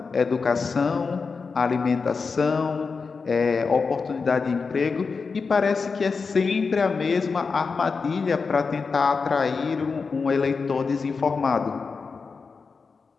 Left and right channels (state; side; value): quieter; right; 4.9 dB